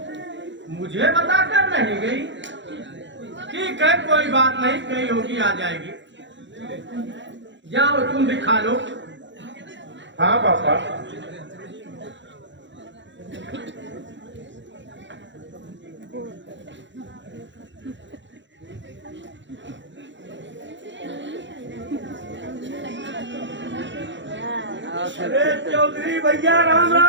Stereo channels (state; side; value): late; left; 0.54 ms